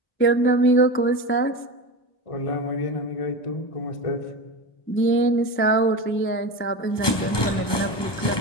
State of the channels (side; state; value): right; late; 1.2 ms